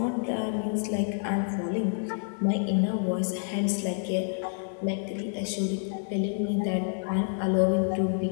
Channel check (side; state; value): right; silent; 59 dB below the other